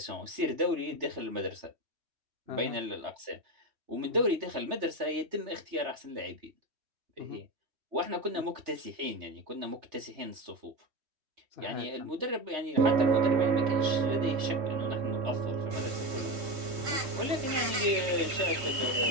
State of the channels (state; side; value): late; left; 3.1 ms